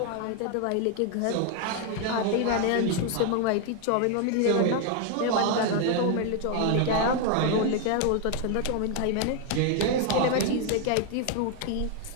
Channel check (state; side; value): different; both; correlation 0.01